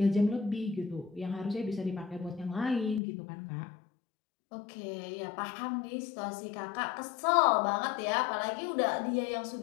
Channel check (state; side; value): drops out; right; at 3.0 s